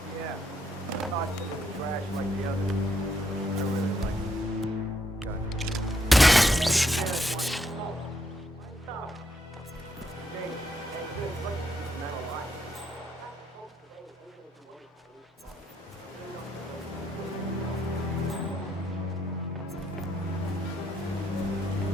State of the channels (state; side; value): normal; both; correlation 0.75